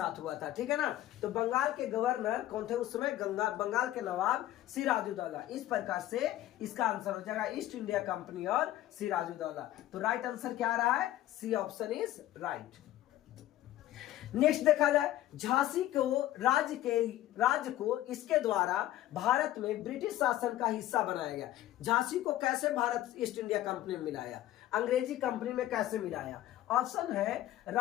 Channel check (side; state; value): right; quieter; 14.1 dB